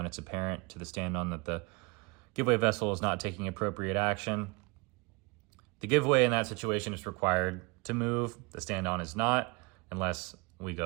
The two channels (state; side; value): quieter; left; 27.8 dB